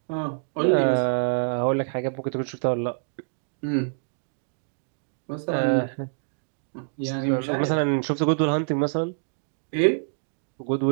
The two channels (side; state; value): left; silent; digital silence